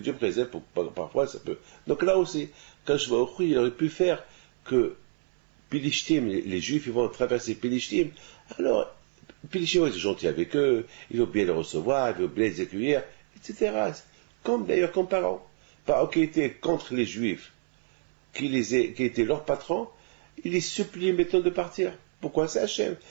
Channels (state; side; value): silent; left; 59 dB below the other